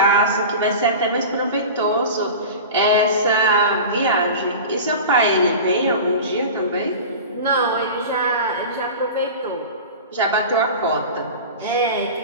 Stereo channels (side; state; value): both; inverted; correlation -0.33